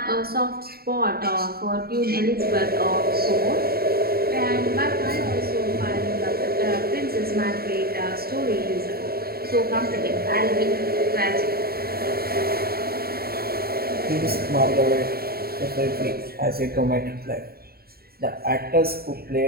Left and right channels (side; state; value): left; late; 0.45 ms